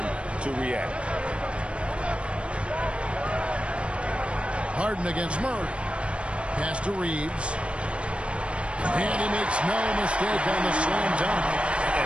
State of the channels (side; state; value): left; late; 0.059 ms